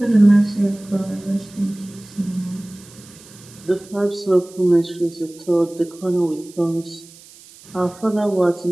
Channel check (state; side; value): noise; right; hiss, 22 dB below the sound